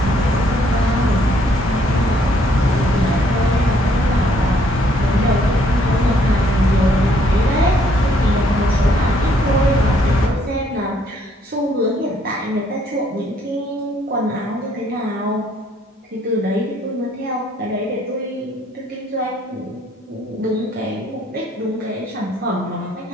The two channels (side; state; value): both; normal; correlation 0.66